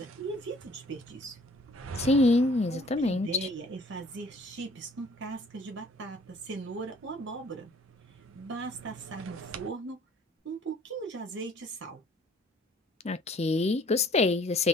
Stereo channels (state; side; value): normal; both; correlation 0.55